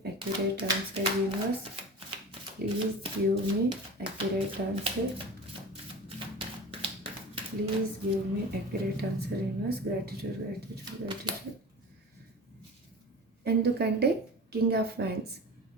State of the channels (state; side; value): normal; both; correlation 0.34